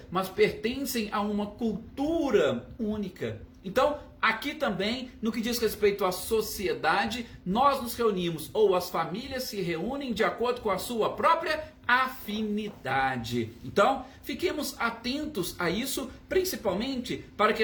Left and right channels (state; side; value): identical; both; correlation 1.00